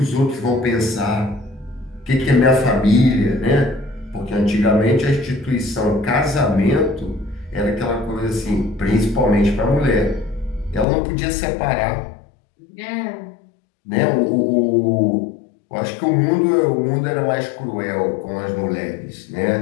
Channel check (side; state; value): right; drops out; at 10.9 s